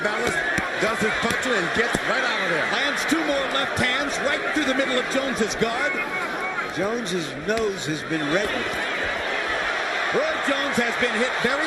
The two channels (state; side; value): identical; both; correlation 1.00